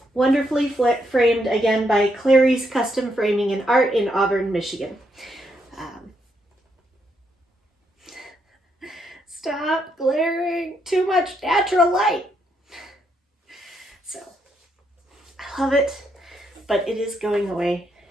wonderfully framed again by Clary's Custom Framing and Art in Auburn, Michigan. Stop glaring, too much natural light. So, I love it, but it is going away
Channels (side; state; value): both; normal; correlation 0.77